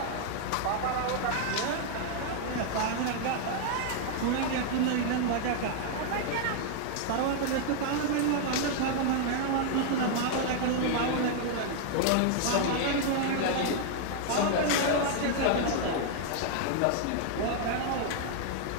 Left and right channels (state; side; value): different; both; correlation 0.00